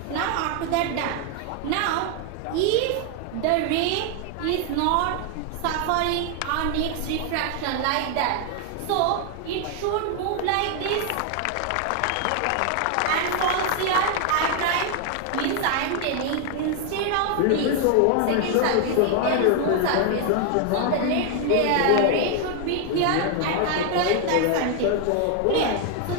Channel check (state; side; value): different; both; correlation 0.00